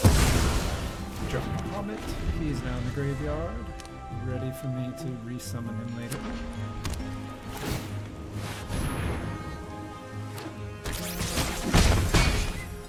Drop Bahamut. He's now in the graveyard, ready for me to resummon him later.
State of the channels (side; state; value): both; identical; correlation 1.00